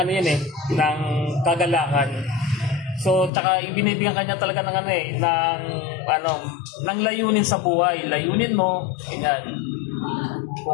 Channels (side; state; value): right; drops out; at 3.3 s